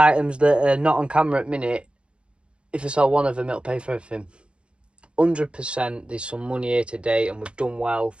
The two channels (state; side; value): late; left; 0.057 ms